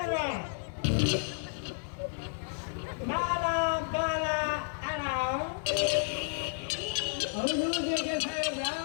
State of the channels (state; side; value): silent; right; digital silence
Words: ಬಾಲ ಬಾಲ ಅಣ ಹೌದು ಸಾಹೇಬ್ರ,